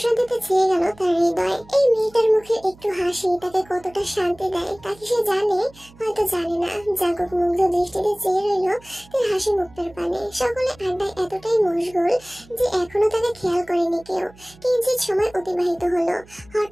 ছেয়ে গেল তার হৃদয়। এই মেয়েটার মুখে একটু হাসি তাকে কতটা শান্তি দেয় তাকে সে জানে, হয়তো জানে না। জাঙ্কুক মুগ্ধ দৃষ্টিতে চেয়ে রইল তার হাসি মুক্তার পানে। সকলে আড্ডায় এতটাই মশগুল যে এখনো তাকে খেয়াল করেনি কেউ। কিঞ্চিত সময় অতিবাহিত হলো।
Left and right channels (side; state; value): right; noise; hum, 24 dB below the sound